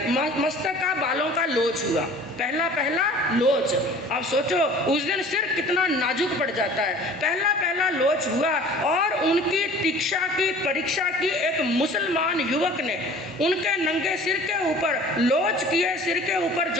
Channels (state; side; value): normal; both; correlation 0.47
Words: मस्तक का बालों का लोच हुआ, पहला लोच। अब सोचो उस दिन सिर कितना नाजुक पड़ जाता है, पहला लोच हुआ। और उनकी दीक्षा की परीक्षा की एक मुसलमान युवक ने उनके नंगे सिर के ऊपर लोच किए, सिर के ऊपर